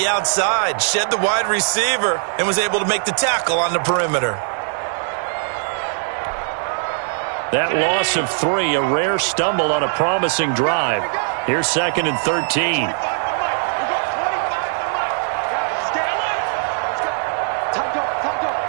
outside? Shed the wide receiver and was able to make the tackle on the perimeter. That loss of 3, a rare stumble on a promising drive. Here's 2nd and 13.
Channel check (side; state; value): left; silent; 62 dB below the other